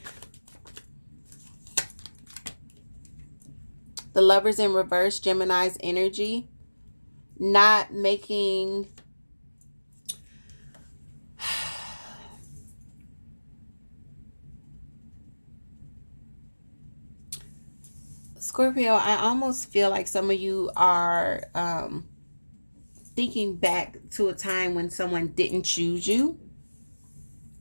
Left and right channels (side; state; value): both; inverted; correlation -1.00